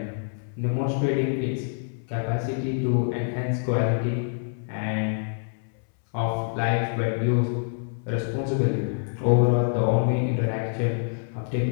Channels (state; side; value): silent; right; 61 dB below the other